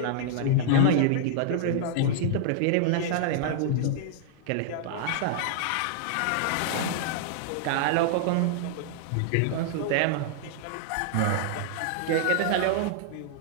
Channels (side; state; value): both; different; correlation -0.01